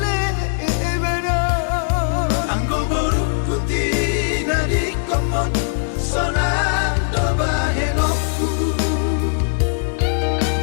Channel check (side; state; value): right; silent; digital silence